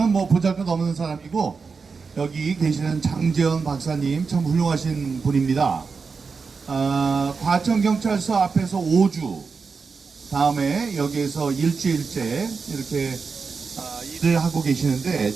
뭐 보잘것없는 사람이고 여기 계시는 장재현 박사님 참 훌륭하신 분입니다. 과천경찰서 앞에서 5주, 다음에 여기에서 일주일째 이렇게 일을 하고 계시는데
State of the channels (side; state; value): left; quieter; 5.0 dB